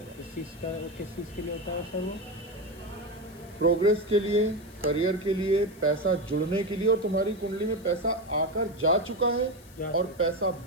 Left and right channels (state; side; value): noise; left; hiss, 24 dB below the sound